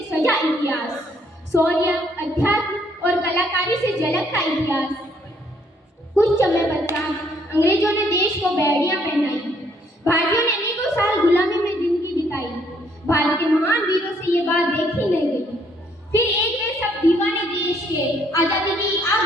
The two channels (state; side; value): normal; both; correlation 0.67